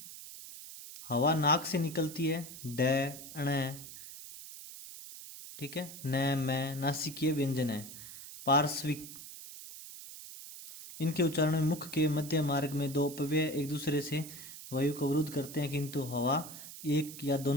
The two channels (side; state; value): right; noise; hiss, 13 dB below the sound